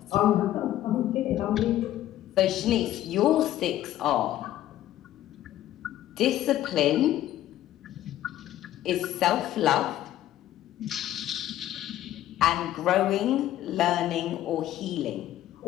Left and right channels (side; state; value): right; quieter; 13.1 dB